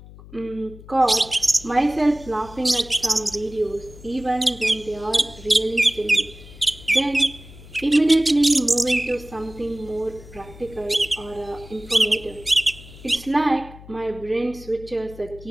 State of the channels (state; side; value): noise; left; hum, 18 dB below the sound